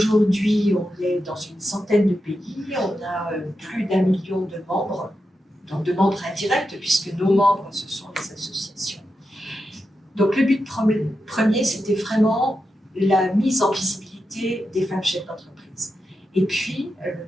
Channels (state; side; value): normal; both; correlation 0.88